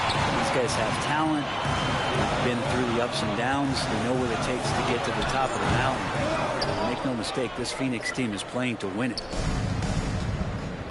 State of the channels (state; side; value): identical; both; correlation 1.00